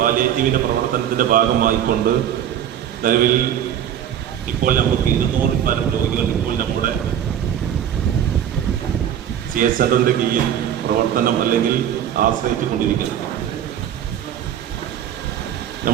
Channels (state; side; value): quieter; left; 9.9 dB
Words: പ്രവർത്തനത്തിൻ്റെ ഭാഗമായിക്കൊണ്ട് നിലവിൽ ഇപ്പോൾ നമുക്ക് 200-ൽ പരം രോഗികൾ ഇപ്പോൾ നമ്മുടെ CHE സെന്ററിൻ്റെ കീഴിൽ പ്രവർത്തനം അല്ലെങ്കിൽ ആശ്രയിച്ചു കൊണ്ടിരിക്കണം.